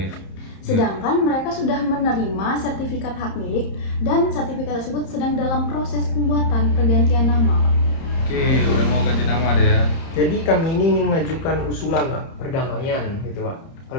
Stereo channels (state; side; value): late; right; 30 ms